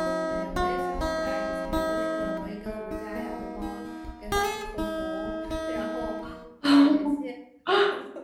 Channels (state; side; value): identical; both; correlation 1.00